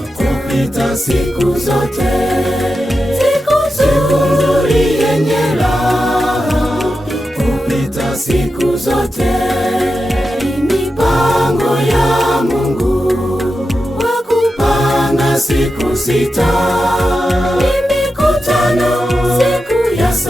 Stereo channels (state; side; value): normal; both; correlation 0.90